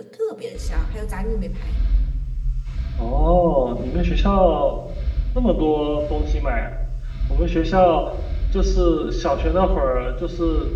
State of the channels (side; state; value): both; identical; correlation 1.00